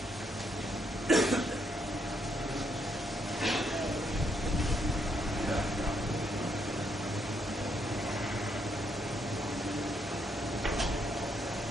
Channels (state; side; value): normal; both; correlation 0.75